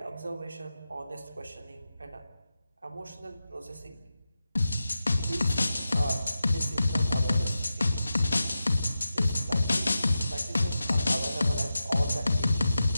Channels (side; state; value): both; inverted; correlation -0.91